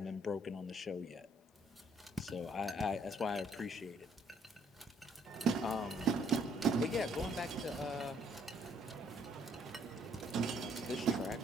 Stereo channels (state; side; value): normal; both; correlation 0.65